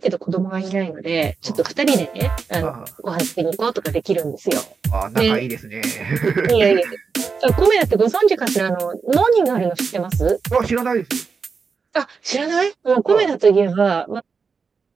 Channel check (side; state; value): left; quieter; 5.3 dB